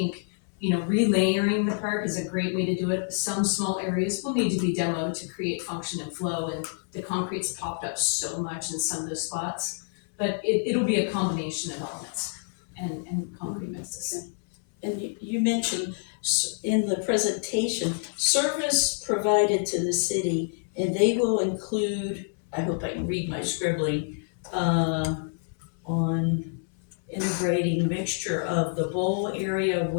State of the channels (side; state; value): right; silent; 60 dB below the other